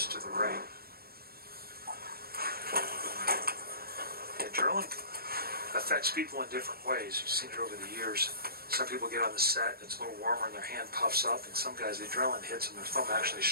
to the right. Adrenaline affects people in different ways. You've seen it over the years. Some people get on the set, it's a little warmer and their hand puffs up, and some guys, the adrenaline hits and their thumb actually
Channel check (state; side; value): late; left; 0.44 ms